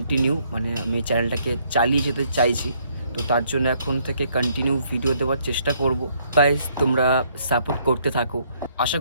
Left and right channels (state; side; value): inverted; both; correlation -0.68